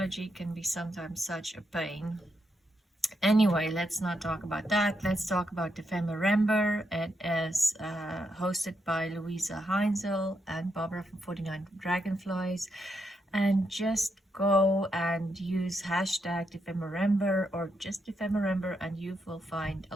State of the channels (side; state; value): both; normal; correlation 0.82